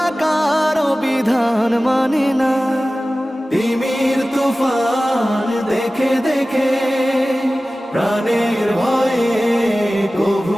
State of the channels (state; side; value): normal; both; correlation 0.96